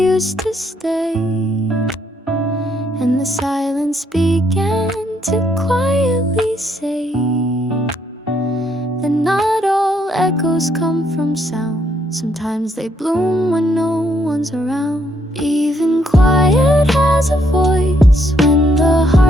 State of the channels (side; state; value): both; normal; correlation 0.72